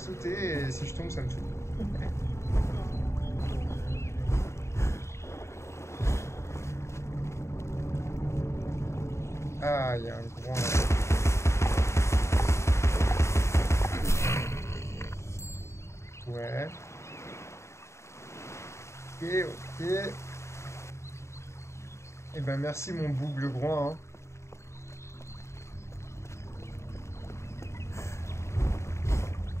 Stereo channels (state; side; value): late; right; 0.14 ms